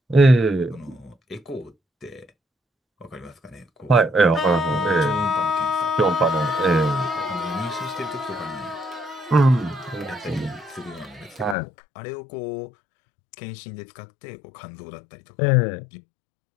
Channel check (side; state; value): right; drops out; at 11.6 s